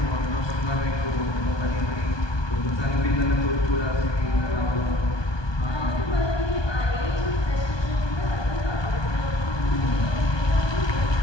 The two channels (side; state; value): right; late; 1.2 ms